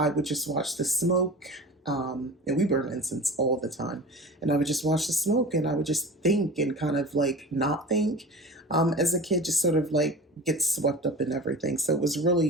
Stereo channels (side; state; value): both; normal; correlation 0.35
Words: would just watch the smoke. And we burn incense all the time. And I would just watch the smoke and I would just think and kind of like not think. As a kid, just sort of like get swept up in everything. So it was